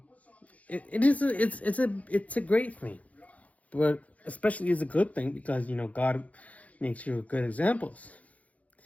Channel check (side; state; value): right; late; 0.069 ms